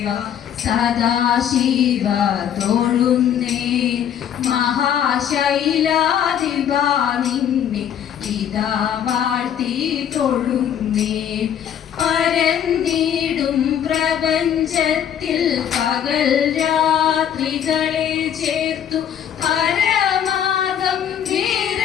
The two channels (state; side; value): quieter; right; 9.3 dB